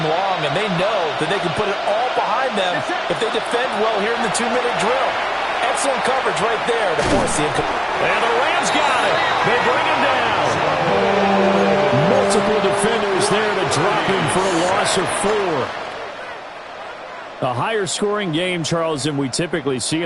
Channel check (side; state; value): both; identical; correlation 1.00